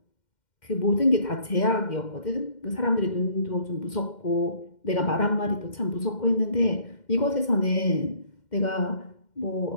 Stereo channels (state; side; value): late; right; 2.1 ms